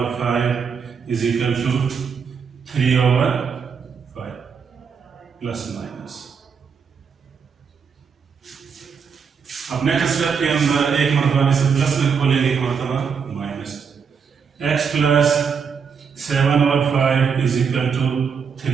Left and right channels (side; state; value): left; quieter; 6.3 dB